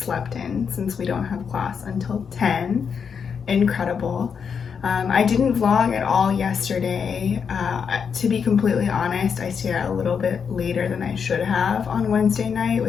in since we don't have class until 10. Incredible. I didn't vlog at all yesterday. To be completely honest, I stayed out a little bit later than I should have on Wednesday night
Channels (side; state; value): right; quieter; 6.6 dB